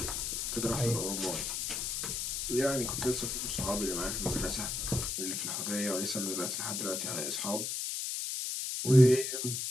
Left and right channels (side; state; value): left; noise; hiss, 2 dB below the sound